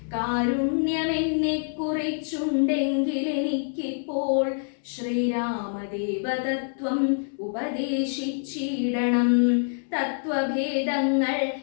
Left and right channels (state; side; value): silent; right; 60 dB below the other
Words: കാരുണ്യമെന്നെ കുറിച്ചുണ്ടെങ്കിൽ എനിക്കിപ്പോൾ ശ്രീരാമദേവതത്വം ഉപദേശിച്ചിടണം. തത്വഭേദങ്ങൾ